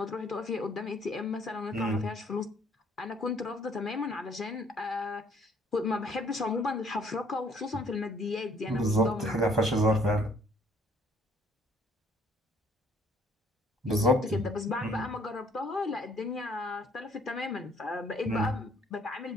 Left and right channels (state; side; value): normal; both; correlation 0.61